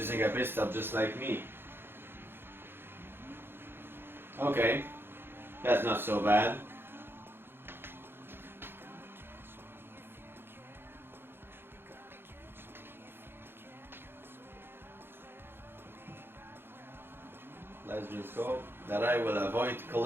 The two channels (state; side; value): late; left; 0.10 ms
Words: a pit stop just like me. Okay, that's not so bad. Let's just hope that I will avoid